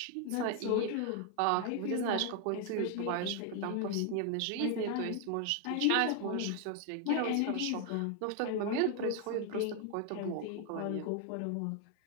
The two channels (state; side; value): different; both; correlation 0.00